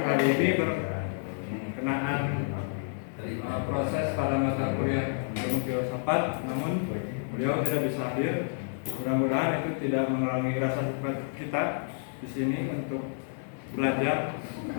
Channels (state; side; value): silent; right; digital silence